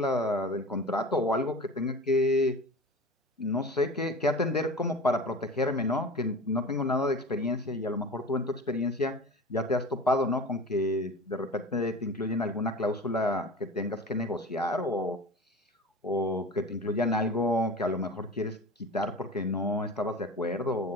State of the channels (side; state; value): both; normal; correlation 0.35